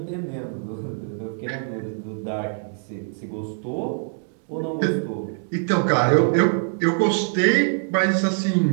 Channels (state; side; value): silent; left; digital silence